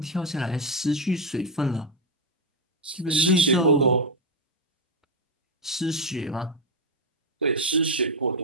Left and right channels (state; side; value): normal; both; correlation 0.04